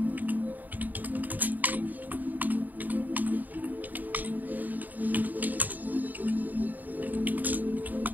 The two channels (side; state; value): left; late; 0.084 ms